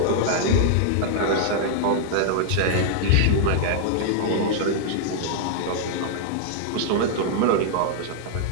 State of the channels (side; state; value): both; different; correlation -0.01